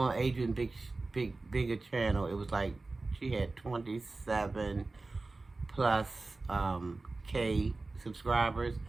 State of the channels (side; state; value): left; quieter; 3.4 dB